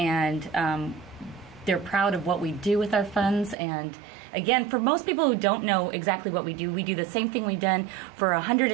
they're proud of what we do with our funds. And again, for most people who don't know exactly what we do the same thing we've done for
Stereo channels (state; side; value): drops out; left; at 3.6 s